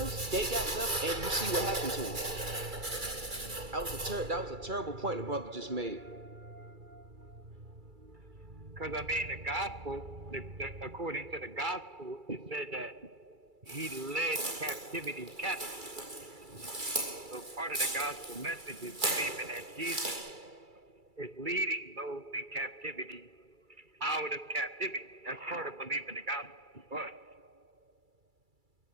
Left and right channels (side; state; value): left; late; 2.3 ms